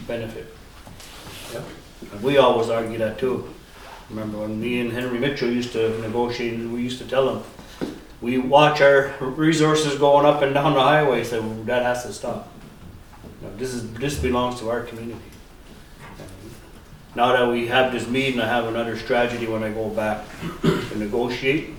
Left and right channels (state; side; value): identical; both; correlation 1.00